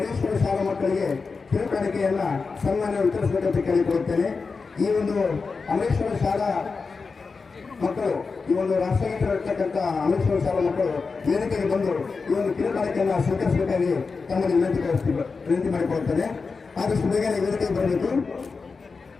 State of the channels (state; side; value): quieter; right; 4.6 dB